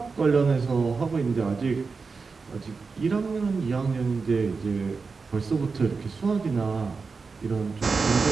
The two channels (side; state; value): left; quieter; 4.6 dB